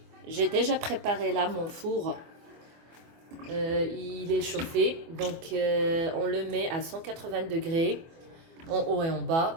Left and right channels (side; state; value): left; late; 24 ms